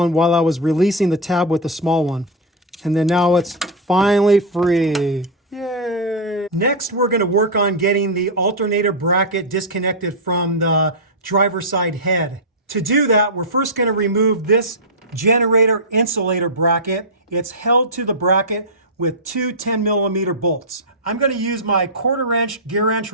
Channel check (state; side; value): normal; both; correlation -0.04